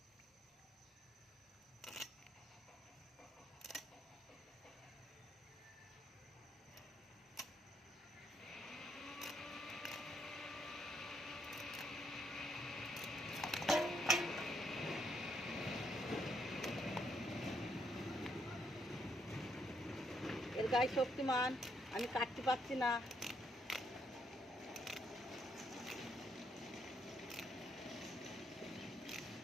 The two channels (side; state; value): both; normal; correlation 0.74